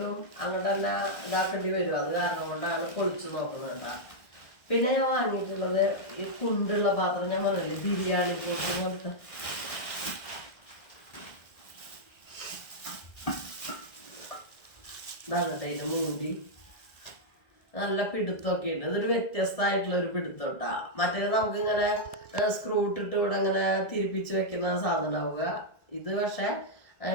അങ്ങോട്ട് തന്നെ ഇതാക്കേണ്ടി വരും. അത് കാരണം കൊണ്ടാണ് പൊളിച്ചു നോക്കുന്നത് കേട്ടാ. പിന്നെ ഞാൻ വാങ്ങിയിട്ടുള്ളത് ഈ കുണ്ടുള്ള പാത്രം, ഞാൻ പറഞ്ഞില്ലേ ബിരിയാണി പോട്ട് പോലത്തെ. ഇതാണ് കേട്ടോ ഇതിന്റെ മൂടി. നല്ല പിടുത്തമൊക്കെ ഉണ്ട്. ഇതൊരു വ്യത്യസ്തമായിട്ടുള്ള ഒരു പിടുത്തം കേട്ടാ. മറ്റേത് നമുക്ക് ഇങ്ങനെ സ്ക്രൂ ഇട്ടിട്ട് ഇവിടെ ഇങ്ങനെ തിരിപ്പിച്ച് വെക്കുന്ന സാധനം ഉണ്ടാവുക. ഇത് പക്ഷെ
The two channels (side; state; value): right; late; 1.6 ms